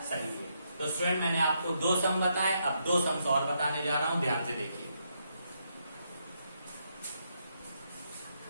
सही है। तो स्टूडेंट मैंने आपको 2 सम बताए, अब 2 सम्स और बताने जा रहा हूं, ध्यान से देखिए।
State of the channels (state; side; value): inverted; both; correlation -0.78